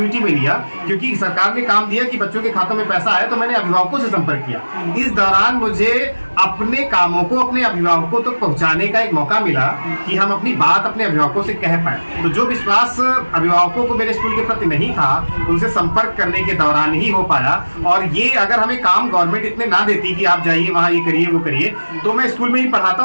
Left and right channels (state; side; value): inverted; both; correlation -1.00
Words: में लिया, क्योंकि सरकार ने काम दिया कि बच्चों के खातों में पैसा आए, तो मैंने अभिभावकों से संपर्क किया। इस दौरान मुझे अपने कामों को अपने अभिभावकों तक पहुंचाने का एक मौका मिला कि हम अपनी बात अपने अभिभावकों से कह पाए। तो जो विश्वास अभिभावकों को मेरे स्कूल के प्रति नहीं था, उनसे संपर्क करने के दौरान ही हो पाया। और ये अगर हमें काम गवर्नमेंट इतने ना देती कि आप जाइए वहां ये करिए वो करिए, तो मैं स्कूल में ही पढ़ाता